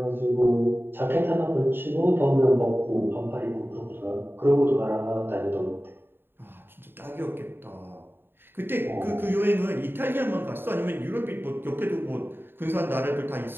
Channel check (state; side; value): late; left; 0.10 ms